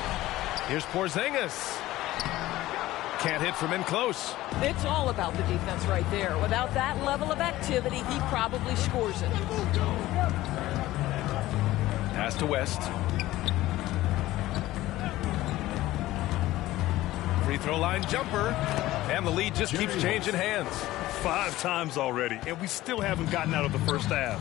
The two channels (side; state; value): right; quieter; 16.3 dB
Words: Here's Porzingis. Can't hit from in close. It's all about the defense right there. Without that level of activity, he probably scores it. Pass to West. Free throw line jumper. And the lead just keeps changing hands. 5 times already, and we still haven't gotten out of the first